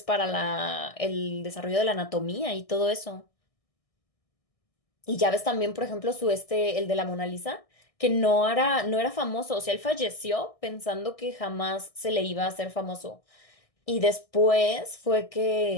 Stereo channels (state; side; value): late; right; 1.6 ms